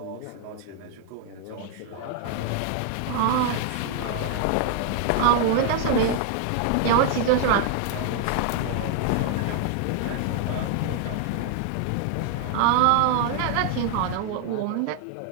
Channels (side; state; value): both; different; correlation 0.00